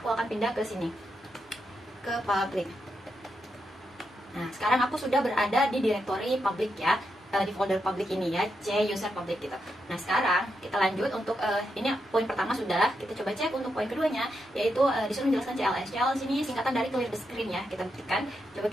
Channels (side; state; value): both; normal; correlation 0.84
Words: aku akan pindah ke sini, ke public. Nah, sekarang aku sudah berada di direktori public ya, di folder public ini ya, C user public gitu. Nah, sekarang kita lanjut untuk ini poin pertama sudah, kita coba cek untuk poin keduanya, yaitu disuruh menjelaskan CLS. CLS ini singkatan dari clear the screen ya, kita buktikan. Coba